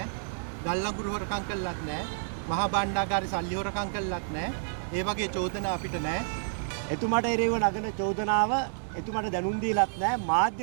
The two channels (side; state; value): left; silent; 58 dB below the other